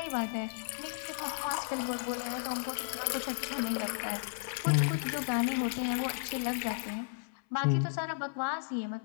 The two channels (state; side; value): silent; right; 55 dB below the other